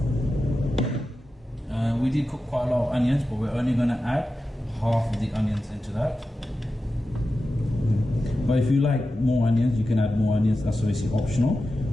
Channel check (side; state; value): both; normal; correlation 0.92